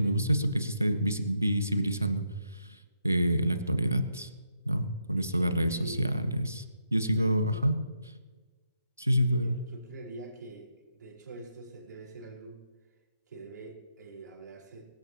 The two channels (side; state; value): both; inverted; correlation -0.80